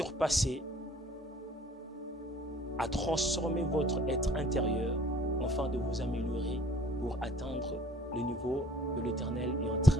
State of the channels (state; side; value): normal; both; correlation 0.53